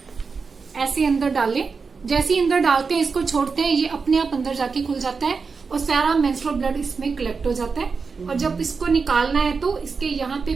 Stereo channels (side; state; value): left; quieter; 4.9 dB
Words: ऐसे अंदर डालें। जैसे ही अंदर डालते हैं इसको छोड़ते हैं, ये अपने आप अंदर जाके खुल जाता है और सारा मेंस्ट्रुअल ब्लड इसमें कलेक्ट हो जाता है। और जब इसको निकालना है तो इसके यहाँ पे